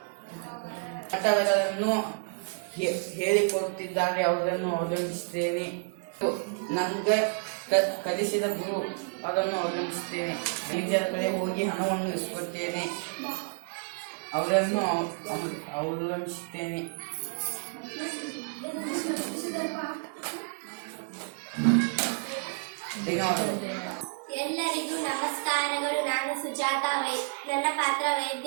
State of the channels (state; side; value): silent; left; digital silence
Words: ಪಾಠಗಳನ್ನು ಹೇಳಿಕೊಡುತ್ತಿದ್ದಾರೆ, ಅವರನ್ನು ಅವಲಂಬಿಸುತ್ತೇನೆ. ನನಗೆ ಕಲಿಸಿದ ಗುರು, ಅವರನ್ನು ಅವಲಂಬಿಸುತ್ತೇನೆ. ಮ್ಯಾನೇಜರ್ ಕಡೆ ಹೋಗಿ ಹಣವನ್ನು ಇಸ್ಕೊಳ್ತೇನೆ, ಅವರನ್ನು ಅವಲಂಬಿಸುತ್ತೇನೆ. ಧನ್ಯವಾದಗಳು. ಎಲ್ಲರಿಗೂ ನಮಸ್ಕಾರಗಳು. ನಾನು ಸುಜಾತ. ನನ್ನ ಪಾತ್ರ